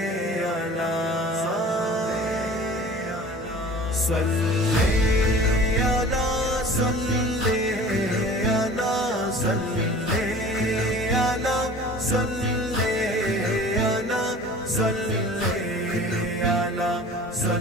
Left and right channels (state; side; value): normal; both; correlation 0.43